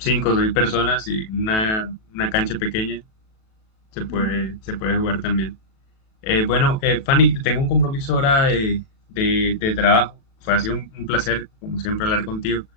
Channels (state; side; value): late; right; 37 ms